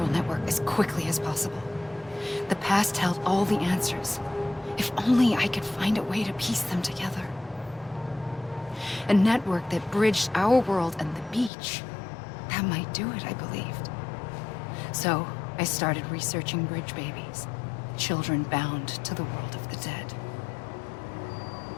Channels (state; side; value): drops out; right; at 11.5 s